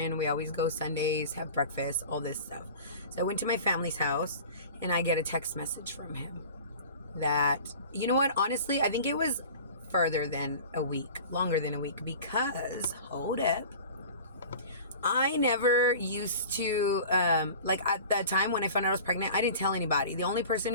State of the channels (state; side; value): inverted; both; correlation -0.40